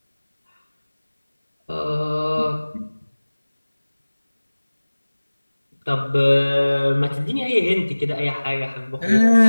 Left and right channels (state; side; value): inverted; both; correlation -1.00